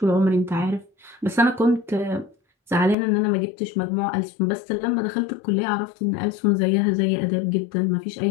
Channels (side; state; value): right; drops out; at 3.0 s